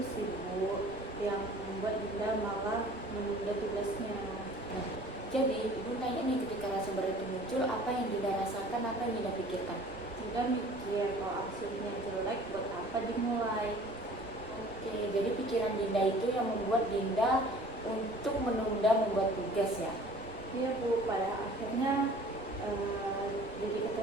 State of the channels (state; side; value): noise; right; rumble, 20 dB below the sound